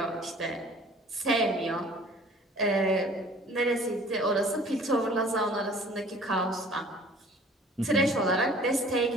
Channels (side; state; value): both; normal; correlation 0.50